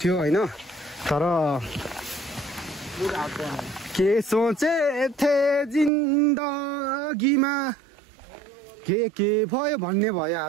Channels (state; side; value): drops out; left; at 5.9 s